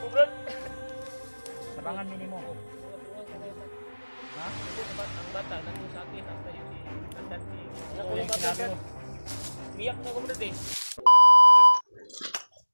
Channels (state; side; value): inverted; both; correlation -1.00